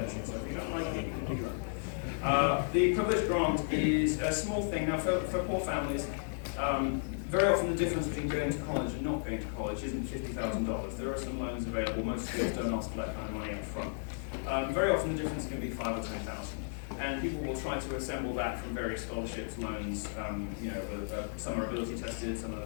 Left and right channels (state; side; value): silent; right; digital silence